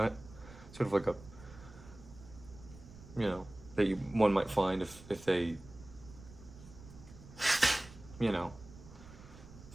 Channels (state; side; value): noise; right; rumble, 18 dB below the sound